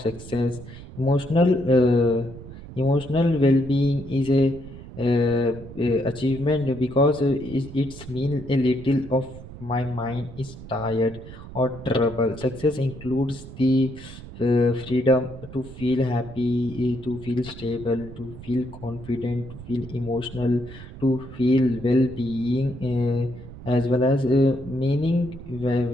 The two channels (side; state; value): right; noise; rumble, 14 dB below the sound